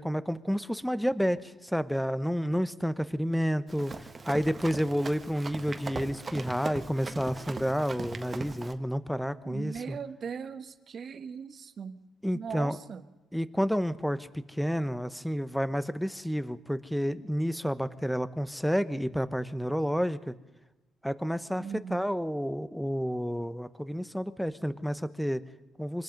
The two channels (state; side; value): normal; both; correlation 0.98